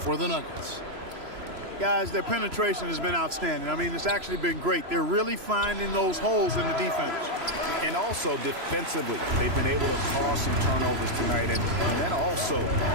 the Nuggets. Guys, their penetration has been outstanding. I mean, it's actually been great. They're really finding those holes in the defense. And also defensively, they've been able to cause some turnovers tonight, and that also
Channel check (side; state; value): left; late; 3.0 ms